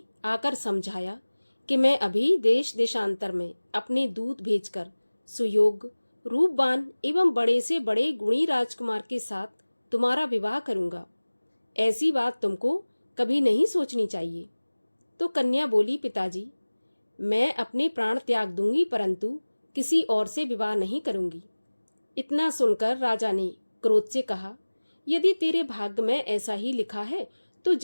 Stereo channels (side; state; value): both; inverted; correlation -1.00